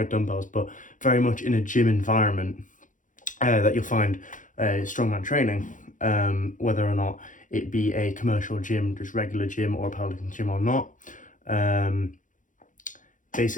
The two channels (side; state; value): right; late; 0.37 ms